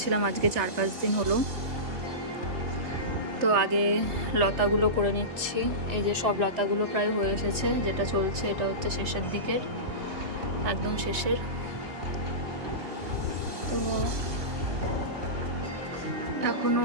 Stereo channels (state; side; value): late; left; 3.2 ms